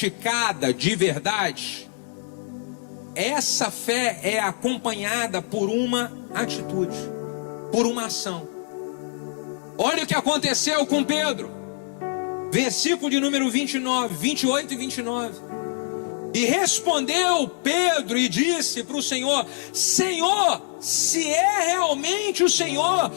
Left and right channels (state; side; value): silent; right; 57 dB below the other